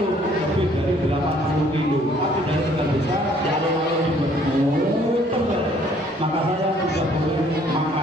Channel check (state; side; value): normal; both; correlation 0.60